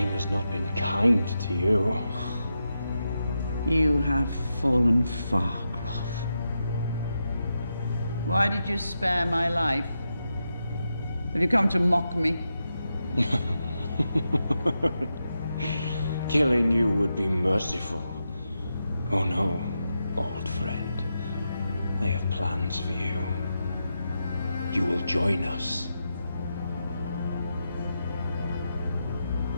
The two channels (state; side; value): inverted; both; correlation -0.87